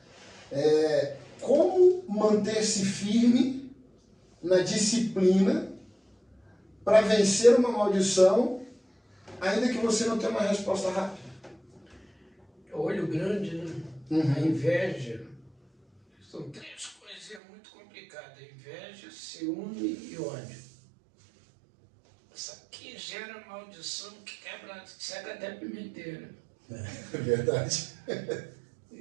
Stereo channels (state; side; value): drops out; left; at 17.4 s